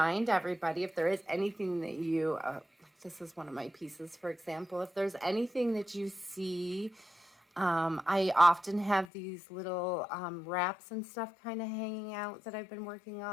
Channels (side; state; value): right; drops out; at 9.1 s